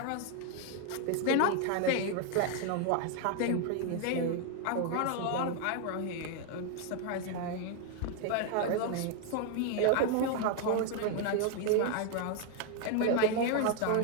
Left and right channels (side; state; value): both; different; correlation 0.01